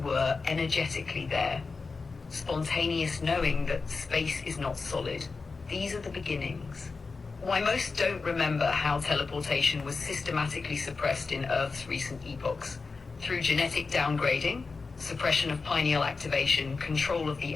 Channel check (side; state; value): right; quieter; 4.3 dB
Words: were energetically there, spontaneous knowing that space is not solid. These are the beginnings. Why most don't remember how teleportation was systematically suppressed in Earth's recent epochs. Through genetic downgrading, suppression of pineal activation, control of the